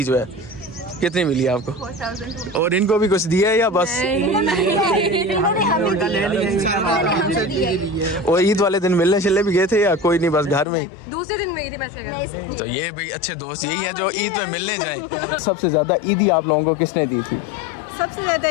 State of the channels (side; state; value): right; drops out; at 10.7 s